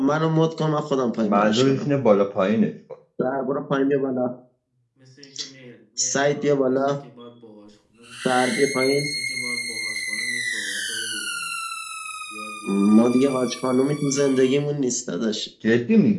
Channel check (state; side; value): identical; both; correlation 1.00